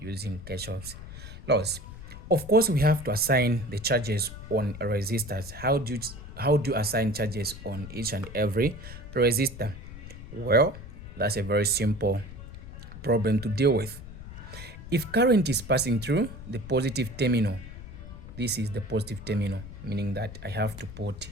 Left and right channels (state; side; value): noise; left; rumble, 13 dB below the sound